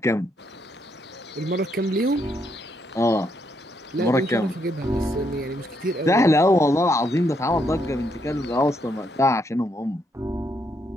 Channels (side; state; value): both; normal; correlation 0.75